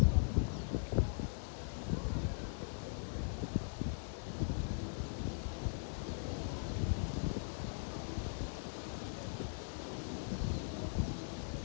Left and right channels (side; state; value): right; silent; digital silence